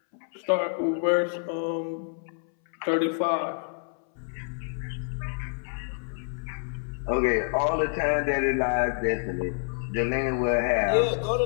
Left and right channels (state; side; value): silent; right; 60 dB below the other